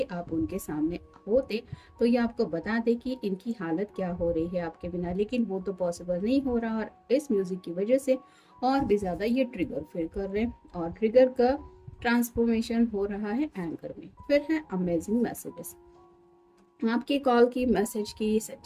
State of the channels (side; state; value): both; identical; correlation 1.00